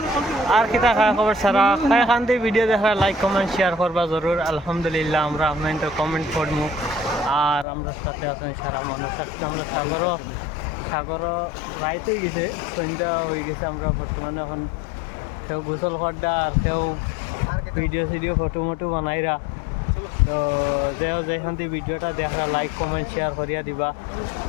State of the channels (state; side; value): drops out; right; at 7.7 s